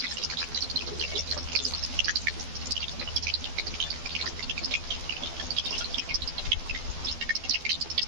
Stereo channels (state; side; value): late; left; 12 ms